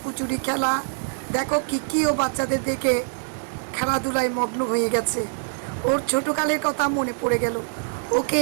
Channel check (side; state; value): left; silent; digital silence